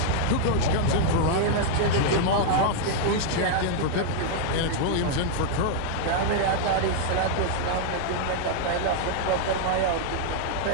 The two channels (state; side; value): different; both; correlation 0.00